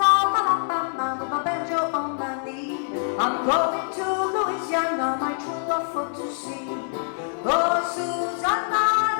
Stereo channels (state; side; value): silent; right; digital silence